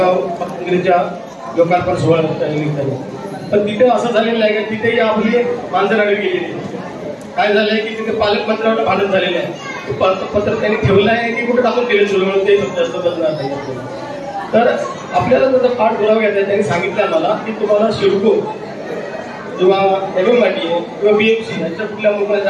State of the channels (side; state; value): both; identical; correlation 1.00